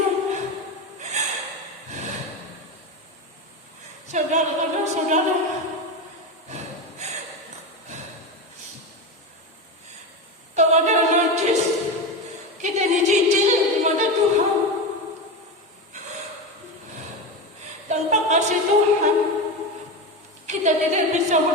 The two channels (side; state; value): both; normal; correlation 0.19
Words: Saudara, kalau ada najis, kita dicicil di mata Tuhan. Tanpa kasih Tuhan, kita tidak bisa